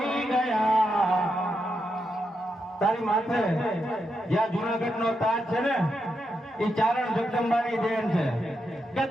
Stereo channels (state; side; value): normal; both; correlation 0.84